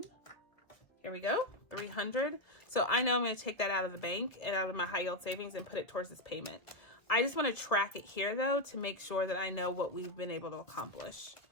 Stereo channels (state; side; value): late; right; 1.1 ms